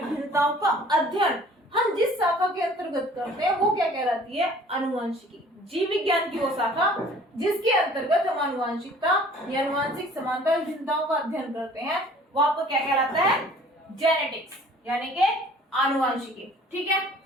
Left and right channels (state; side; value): normal; both; correlation 0.51